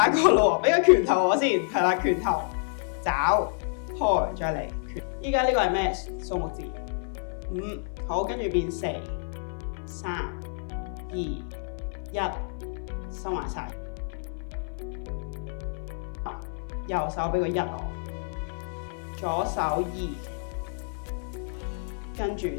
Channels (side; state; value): right; silent; 56 dB below the other